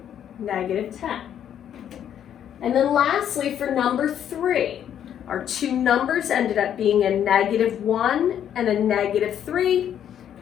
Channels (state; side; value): quieter; right; 9.7 dB